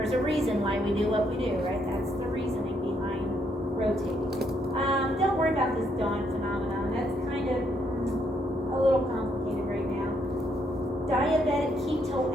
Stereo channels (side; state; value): both; normal; correlation 0.73